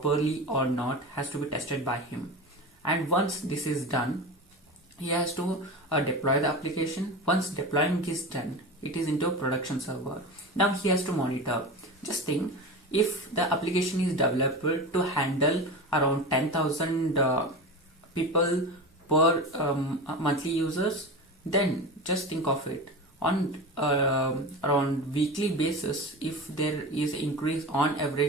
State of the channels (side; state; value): both; normal; correlation 0.27